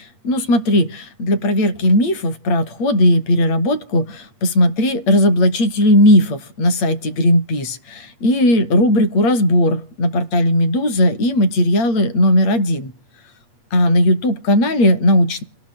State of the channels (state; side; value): late; right; 8.5 ms